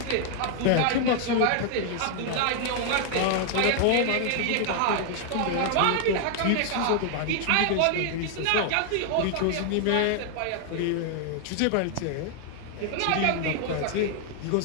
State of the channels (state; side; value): different; both; correlation 0.00